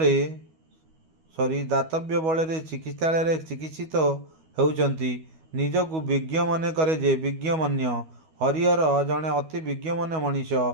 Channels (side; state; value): left; late; 12 ms